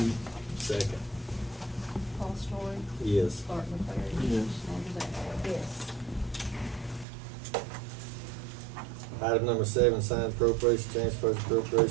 Second. Paul Story, Yes. Mark McCray. Yes. Sandra Bennett. Yes. Item number 7, signed appropriation, transfers,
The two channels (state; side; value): drops out; left; at 7.1 s